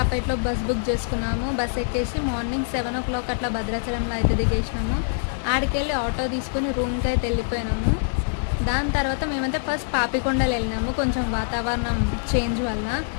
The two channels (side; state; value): right; silent; 62 dB below the other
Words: బస్ బుక్ చేసుకున్నాము. బస్ ఎక్కేసి మార్నింగ్ 7 o'clock అట్లా భద్రాచలంలో అయితే దిగేసినాము. ఆడికెళ్ళి ఆటో తీసుకొని రూమ్కి అయితే వెళ్ళిపోయినాము. దాని తర్వాత మేమైతే ఫస్ట్ పాపికొండలు వెళ్ళినాము. కొంచెం వాతావరణం చేంజ్ వల్ల